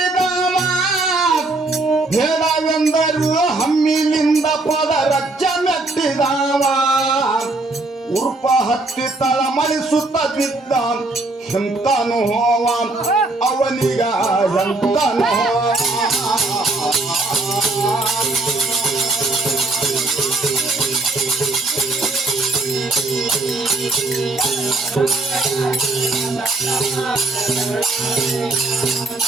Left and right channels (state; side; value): quieter; left; 3.0 dB